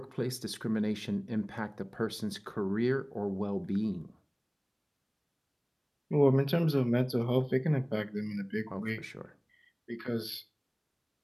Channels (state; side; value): identical; both; correlation 1.00